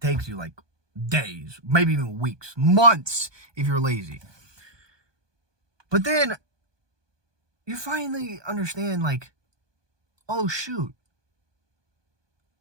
you like days, maybe even weeks, months if you're lazy. But then you finally understand, like, oh shoot,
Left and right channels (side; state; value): left; late; 1.2 ms